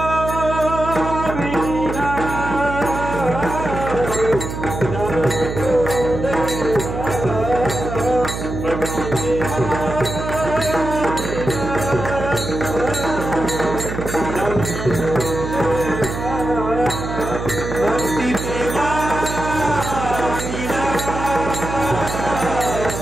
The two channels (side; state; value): right; noise; hum, 6 dB below the sound